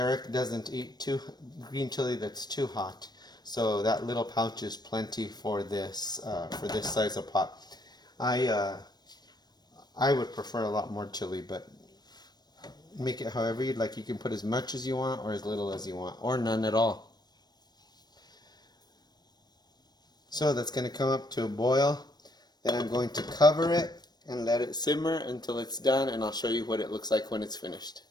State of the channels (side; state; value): right; late; 0.20 ms